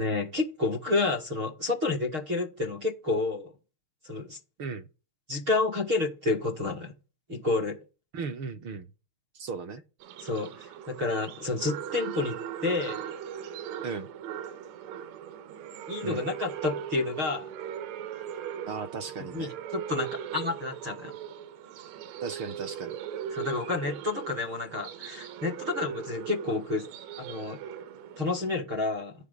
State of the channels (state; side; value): late; left; 6.5 ms